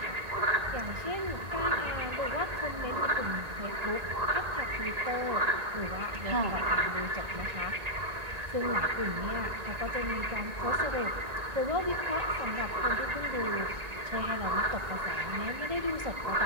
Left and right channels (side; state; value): left; late; 1.9 ms